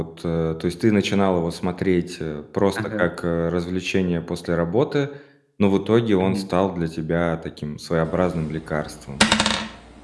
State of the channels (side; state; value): both; identical; correlation 1.00